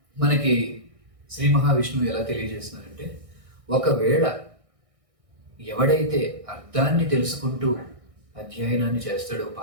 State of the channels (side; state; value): left; late; 1.6 ms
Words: మనకి శ్రీ మహావిష్ణువు ఎలా తెలియజేస్తున్నారంటే, ఒకవేళ ఎవడైతే అర్థాన్ని తెలుసుకుంటూ అధ్యయనాన్ని చేస్తాడో,